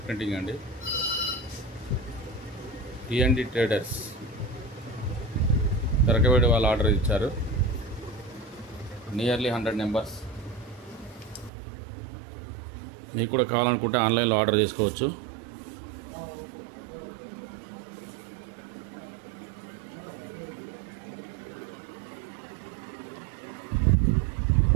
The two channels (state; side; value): drops out; left; at 11.5 s